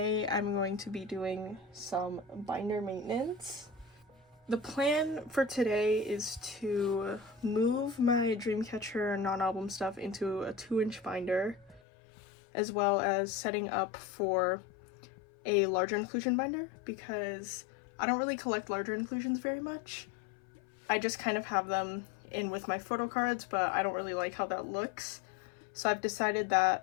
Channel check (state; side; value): drops out; right; at 11.8 s